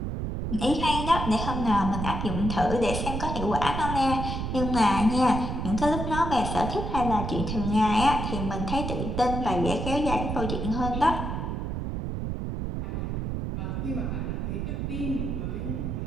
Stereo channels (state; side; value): noise; right; rumble, 3 dB below the sound